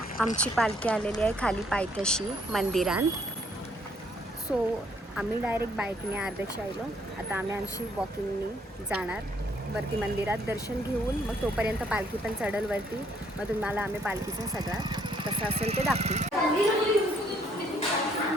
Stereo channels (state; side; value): normal; both; correlation 0.66